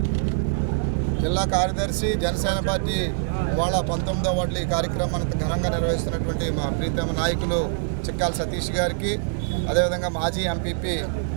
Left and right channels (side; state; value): left; silent; digital silence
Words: కార్యదర్శి జనసేన పార్టీ ఇవాళ 19వ వార్డులో ఈ కార్యక్రమాన్ని ఘనంగా నిర్వహిస్తున్నటువంటి మా ప్రీతమ నాయకులు చిక్కాల సతీష్ గారికి, అదేవిధంగా మాజీ ఎంపీపీ